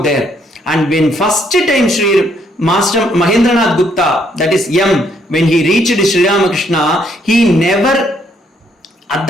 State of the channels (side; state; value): both; normal; correlation 0.70